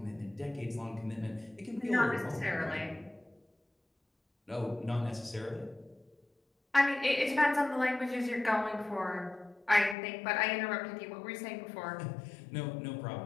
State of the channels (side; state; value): right; drops out; at 10.0 s